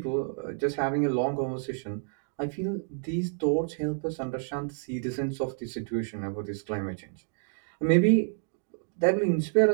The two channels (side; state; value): left; silent; digital silence